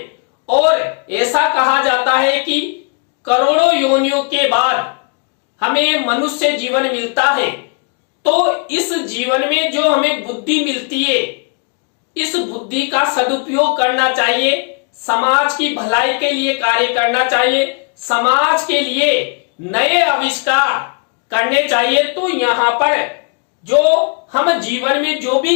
और ऐसा कहा जाता है कि करोड़ों योनियों के बाद हमें मनुष्य जीवन मिलता है। तो इस जीवन में जो हमें बुद्धि मिलती है, इस बुद्धि का सदुपयोग करना चाहिए, समाज की भलाई के लिए कार्य करना चाहिए, समाज के लिए नए आविष्कार करने चाहिए। तो यहाँ पर जो हम जीवन में जो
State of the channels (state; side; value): quieter; right; 38.3 dB